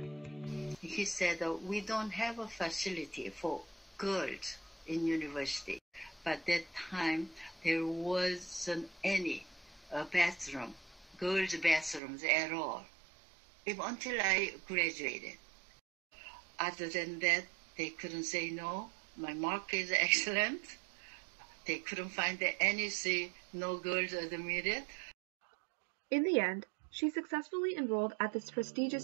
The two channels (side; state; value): left; drops out; at 12.0 s